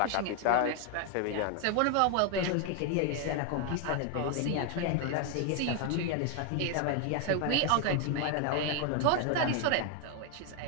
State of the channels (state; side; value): different; both; correlation 0.01